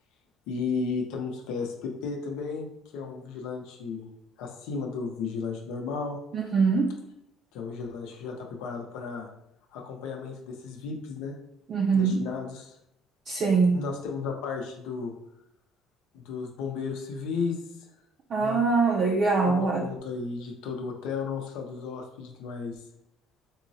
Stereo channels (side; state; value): both; normal; correlation 0.60